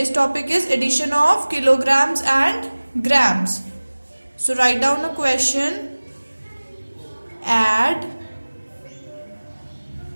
topic is addition of kilograms and grams. So write down a question. Add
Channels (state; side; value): inverted; both; correlation -1.00